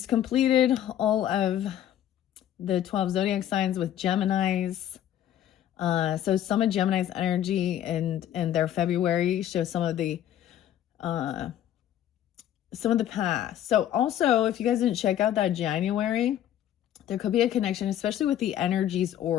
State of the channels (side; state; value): right; quieter; 11.3 dB